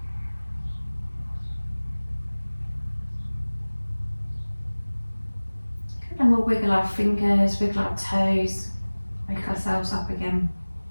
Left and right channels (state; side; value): inverted; both; correlation -1.00